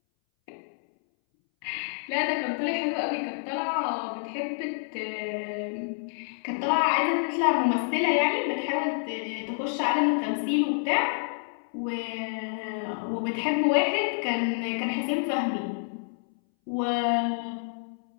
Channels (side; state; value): right; silent; 59 dB below the other